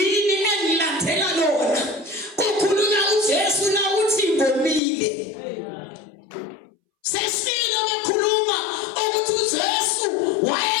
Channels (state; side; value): drops out; right; at 4.8 s